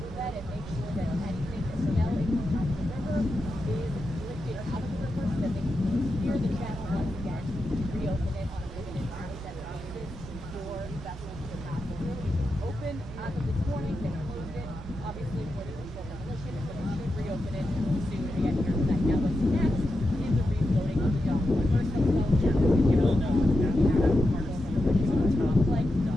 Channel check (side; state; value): both; normal; correlation 0.88